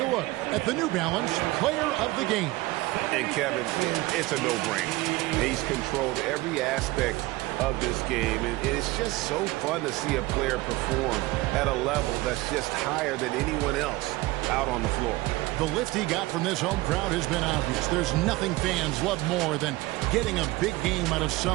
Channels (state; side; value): quieter; left; 20.1 dB